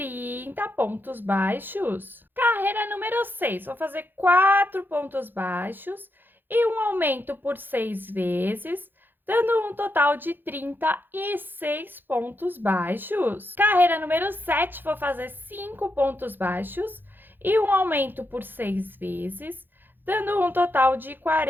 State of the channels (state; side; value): late; left; 0.095 ms